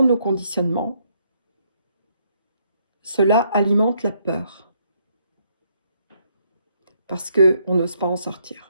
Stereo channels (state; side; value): inverted; both; correlation -0.72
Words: nos conditionnements, cela alimente la peur. Parce qu'on n'ose pas en